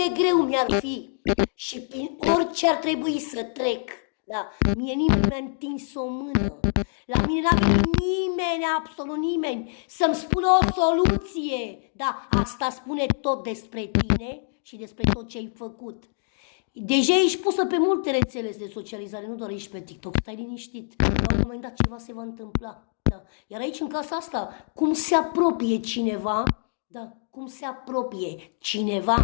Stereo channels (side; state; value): right; silent; digital silence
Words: greu mi-ar fi și prin orice ar trebui să trec. Da, mie nimeni nu mi-a întins o mână. La mine n-a venit nimeni, absolut nimeni, să-mi spună o soluție. Da, asta spune tot despre tine și despre tot ce ai făcut. Deja ești pusă pe multe rețele de socializare, nu doar ești pe TikTok, stai liniștit. La un moment dat ceva se va întâmpla. Da. Iar aici, în casa asta, cum se apropie cineva, da, cum se apropie